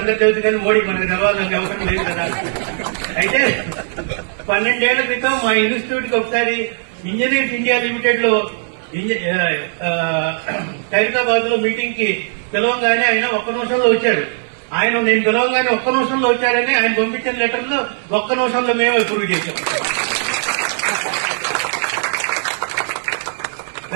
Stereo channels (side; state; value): left; silent; 67 dB below the other